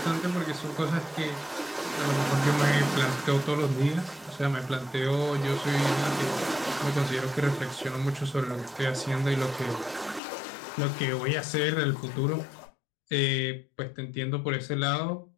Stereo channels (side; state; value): right; drops out; at 10.2 s